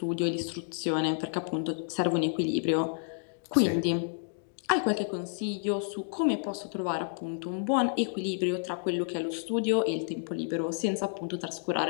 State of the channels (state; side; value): silent; right; digital silence